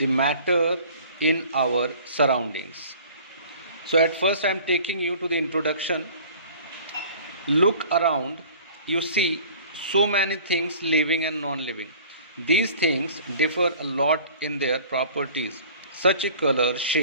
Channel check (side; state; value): both; inverted; correlation -0.48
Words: matter in our surroundings. So, at first, I am taking you to the introduction. Look around, you see so many things living and non living. These things differ a lot in their properties, such as color,